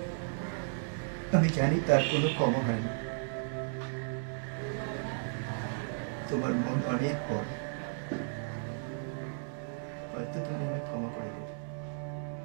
আমি জানি তার কোনো ক্ষমা হয় না। তোমার মন অনেক বড়, হয়তো তুমি আমায় ক্ষমা করে দেবে।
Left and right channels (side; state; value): left; silent; 55 dB below the other